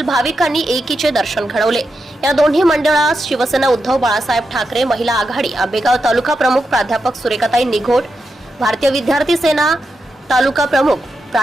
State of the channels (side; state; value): both; normal; correlation 0.87